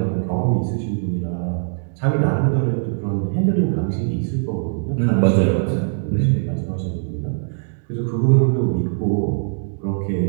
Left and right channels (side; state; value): left; silent; digital silence